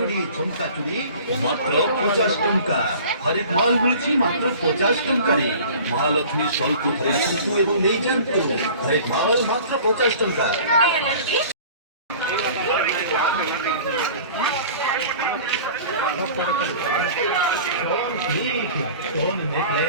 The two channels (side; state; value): both; inverted; correlation -0.44